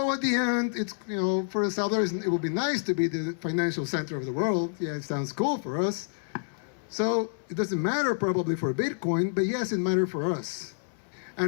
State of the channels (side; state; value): right; silent; 59 dB below the other